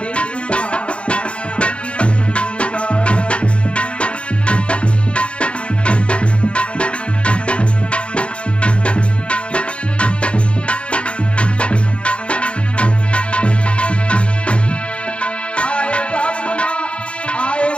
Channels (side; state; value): right; late; 0.059 ms